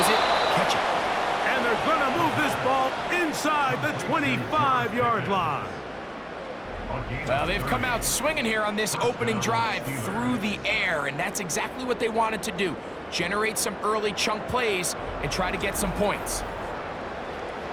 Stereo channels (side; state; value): both; identical; correlation 1.00